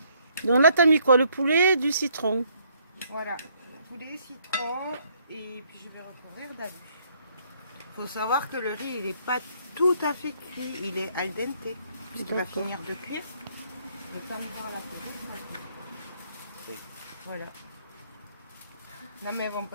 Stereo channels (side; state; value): both; inverted; correlation -0.68